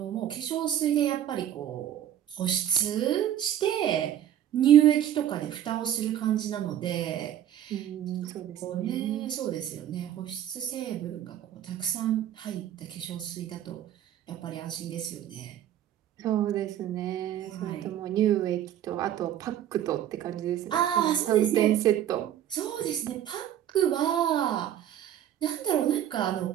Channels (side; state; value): left; quieter; 10.9 dB